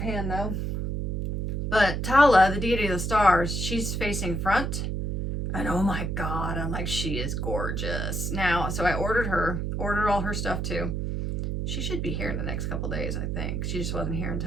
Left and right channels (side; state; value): right; noise; hum, 2 dB below the sound